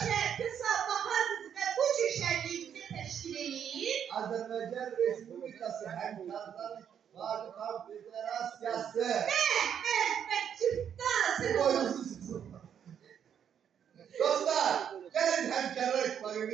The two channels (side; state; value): left; quieter; 8.6 dB